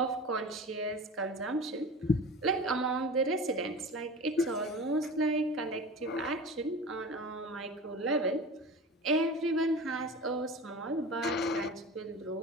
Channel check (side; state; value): both; normal; correlation 0.34